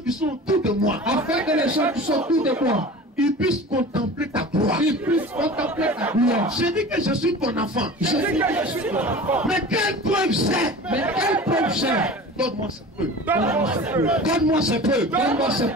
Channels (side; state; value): both; normal; correlation 0.37